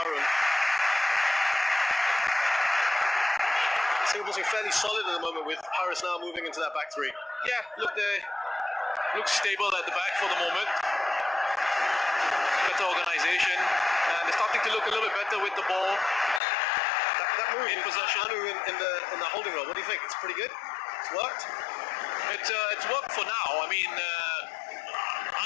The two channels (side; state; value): right; drops out; at 16.4 s